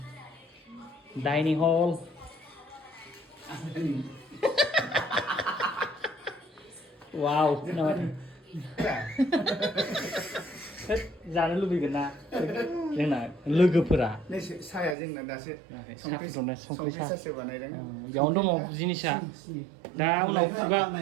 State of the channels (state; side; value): drops out; left; at 15.0 s